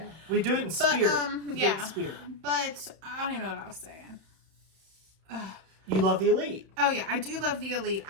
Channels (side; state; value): left; late; 31 ms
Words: We do it in spirit. But I don't even know what I was saying. You love the Elite. Oh, yeah. I do love the Elite.